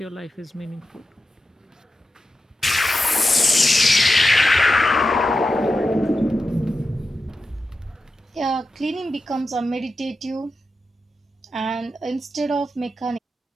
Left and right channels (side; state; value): both; normal; correlation 0.90